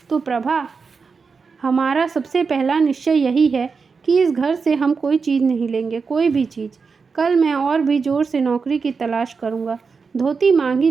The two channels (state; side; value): quieter; left; 5.1 dB